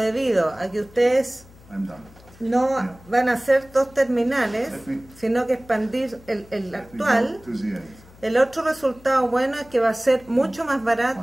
a que ustedes no van a hacer 2 terminales, sino que expandir el actual, el otro resultado bueno es que va a ser mucho más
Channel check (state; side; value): noise; left; hum, 23 dB below the sound